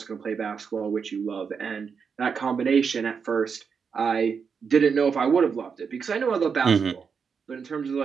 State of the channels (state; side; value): quieter; left; 6.1 dB